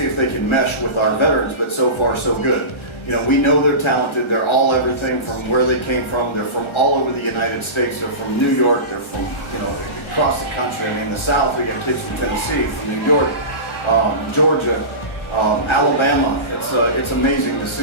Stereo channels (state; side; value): late; right; 1.3 ms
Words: if they can mesh with our veterans, but so far so good. You know, we know they're talented. They're all everything from where they came from. They're from all over the United States. They're from New York. They're from, you know, across the country. I mean, the South, we got kids from Tennessee, from New York, Georgia, Alabama. It's amazing to